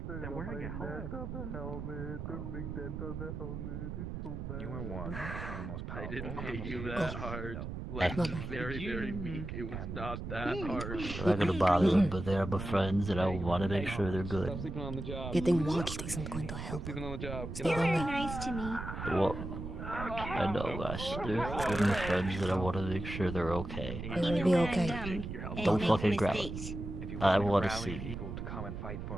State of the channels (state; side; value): noise; right; rumble, 6 dB below the sound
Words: They're wearing a helmet. The big dent on the helmet. It's so bad. You are one of the most powerful. I didn't hit you that hard. Like, very, very weak. It was not that hard. I'm not gonna bother them, but they're my friends, and I want to make sure they're good. Sleeping on the job. Getting watched isn't going to help. Sleeping on the job. Stay lonely. Nice to me. Well, I know, guys. They're my friends, and I want to make sure they're okay. It'll be okay. Don't fucking grab them. I want to see. People to come and fight